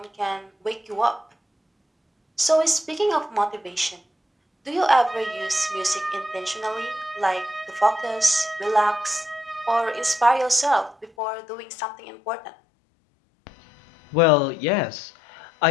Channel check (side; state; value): right; drops out; at 11.1 s